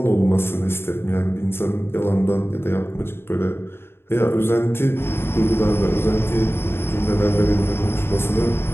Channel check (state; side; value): late; right; 0.11 ms